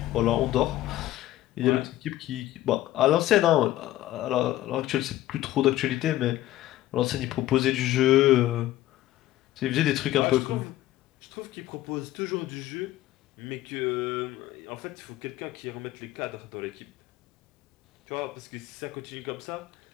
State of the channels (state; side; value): quieter; right; 14.7 dB